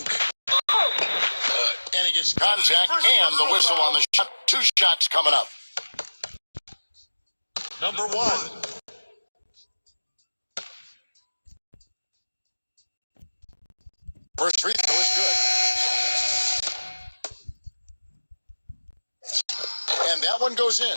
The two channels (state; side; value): inverted; both; correlation -1.00